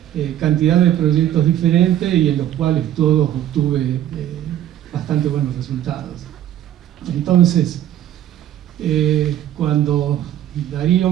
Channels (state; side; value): quieter; left; 11.7 dB